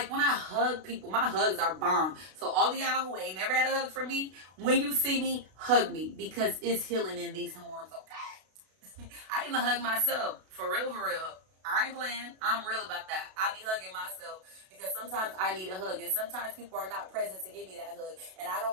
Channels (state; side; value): late; left; 32 ms